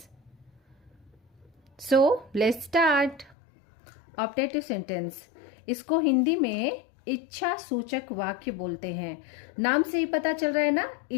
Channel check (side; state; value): right; drops out; at 3.4 s